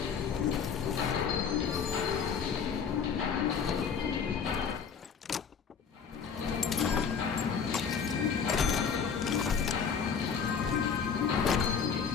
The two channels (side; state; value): right; quieter; 6.5 dB